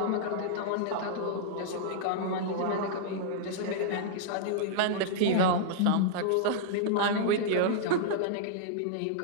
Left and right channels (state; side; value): different; both; correlation -0.01